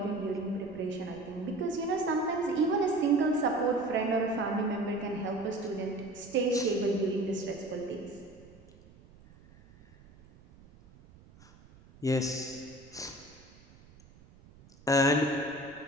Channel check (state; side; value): noise; right; rumble, 24 dB below the sound